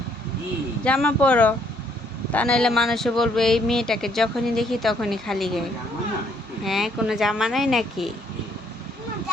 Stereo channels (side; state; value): both; normal; correlation 0.68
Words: জামা পরো, তা নাহলে মানুষে বলবে এই মেয়েটাকে যখনই দেখি তখনই খালি গায়ে। হ্যাঁ, কোনো জামা নাই নাকি?